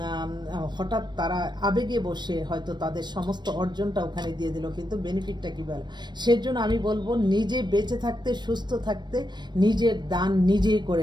হঠাৎ তারা আবেগে বসে হয়তো তাদের সমস্ত অর্জনটা ওখানে দিয়ে দিল, কিন্তু বেনিফিটটা কী বলে। সেজন্য আমি বলবো নিজে বেঁচে থাকতে, সুস্থ থাকতে নিজের দান নিজেই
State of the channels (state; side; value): late; left; 0.22 ms